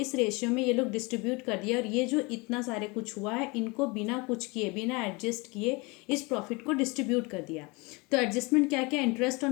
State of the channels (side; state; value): right; quieter; 27.0 dB